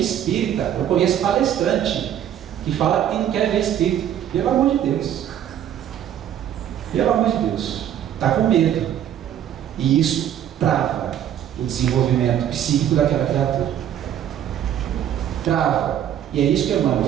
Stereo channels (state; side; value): quieter; left; 10.4 dB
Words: espírita, eu conheço palestrante que fala que não quer ver espírito. Pelo amor de Deus. Pelo amor de Deus. Está com medo. E isso trava o desenvolvimento psíquico daquela criatura. Trava. E é isso que Emmanuel